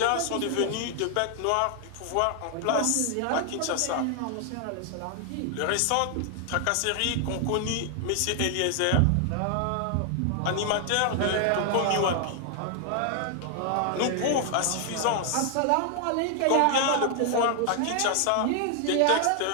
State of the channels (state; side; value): different; both; correlation 0.00